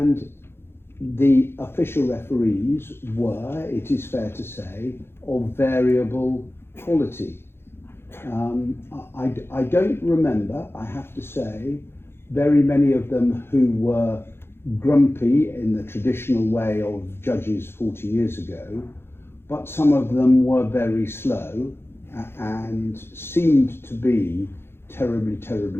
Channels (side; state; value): right; late; 0.11 ms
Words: the official referees were, it is fair to say, of variable quality. I don't remember, I have to say, very many of them who were grumpy in the traditional way of judges 40 years ago, but some of them were very slow and seemed to be terribly,